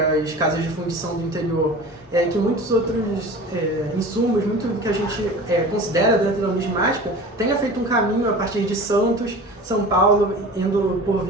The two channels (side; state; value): both; normal; correlation 0.37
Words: as casas de fundição do interior. Que muitos outros insumos, muito do que a gente considera dentro da numismática, tenha feito um caminho a partir de Santos, São Paulo, indo por